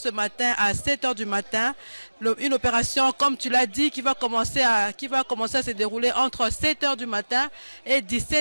matin à 7 h du matin. Une opération, comme tu l'as dit, qui va commencer à se dérouler entre 7 h du matin et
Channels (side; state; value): both; inverted; correlation -1.00